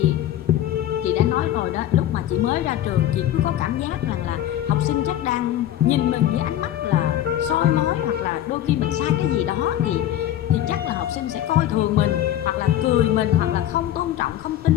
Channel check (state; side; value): quieter; right; 12.1 dB